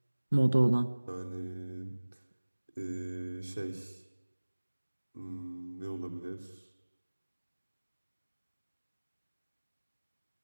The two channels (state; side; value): inverted; both; correlation -1.00